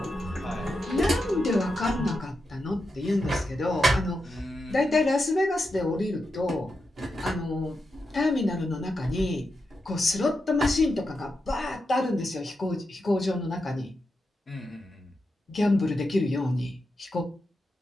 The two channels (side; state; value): both; normal; correlation 0.87